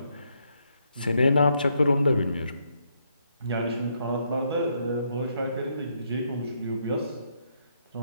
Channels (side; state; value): both; inverted; correlation -0.75